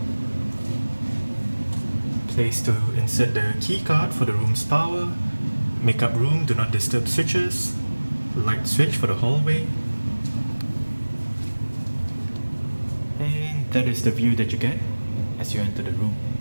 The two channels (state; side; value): inverted; both; correlation -1.00